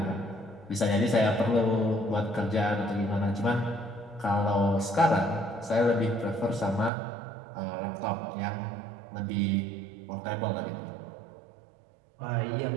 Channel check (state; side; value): drops out; left; at 6.9 s